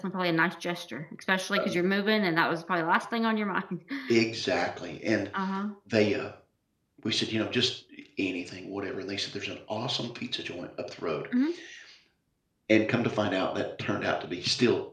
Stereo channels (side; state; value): both; identical; correlation 1.00